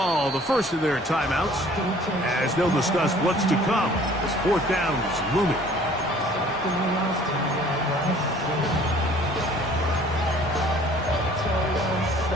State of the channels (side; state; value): both; normal; correlation 0.53